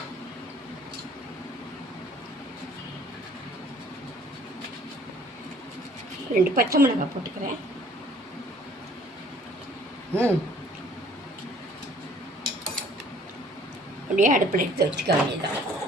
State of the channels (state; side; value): normal; both; correlation 0.56